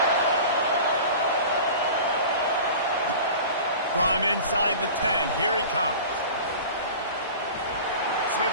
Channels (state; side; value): inverted; both; correlation -0.38